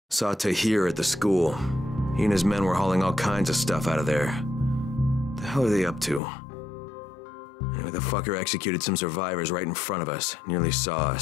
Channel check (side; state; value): right; drops out; at 6.2 s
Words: Saw Tahir at the school. He and his men were hauling all kinds of stuff out of there. The hell are they up to? Anyway, the fucker executed some survivors right in front of us. Nearly saw